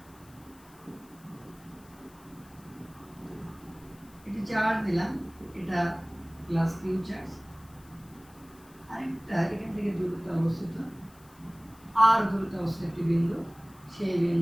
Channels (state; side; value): noise; left; hiss, 26 dB below the sound